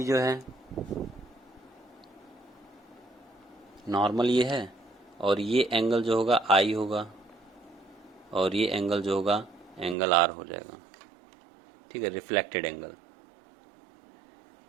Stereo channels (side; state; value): left; drops out; at 10.0 s